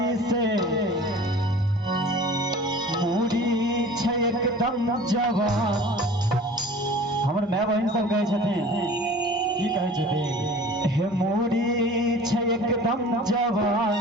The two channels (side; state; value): both; normal; correlation 0.43